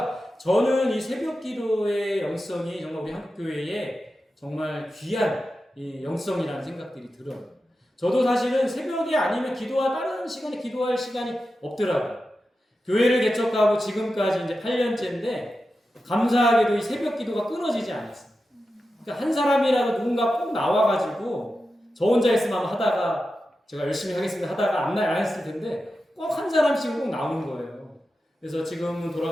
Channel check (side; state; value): both; normal; correlation 0.91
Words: 저는 이 새벽 기도의 영성이 정말 우리 한국교회에 정말 귀한 이 영성이라는 생각들이 들어요. 저도 사실은 새벽에 아니면 다른 시간에 기도할 시간이 없더라고요. 교회를 개척하고 지금까지 이제 8년째인데 감사하게도 이 새벽 기도가 끊어지지 않았어요. 그러니까 한 사람이라도 누군가 꼭 나와가지고, 저 혼자 있으면 하다가 제가 열심히 하겠습니다 하다가 안 했을 텐데 꼭 한 사람씩은 꼭 나오는 거예요. 그래서 지금은